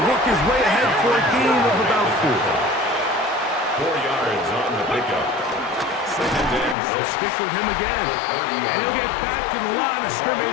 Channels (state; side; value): drops out; right; at 6.8 s